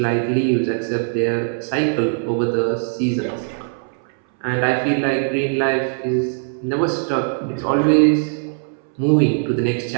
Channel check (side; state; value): left; silent; 64 dB below the other